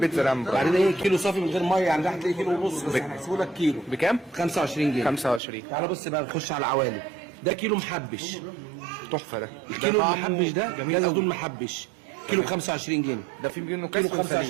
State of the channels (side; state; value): left; drops out; at 5.4 s